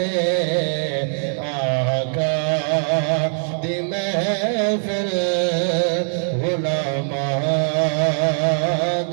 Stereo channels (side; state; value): left; silent; digital silence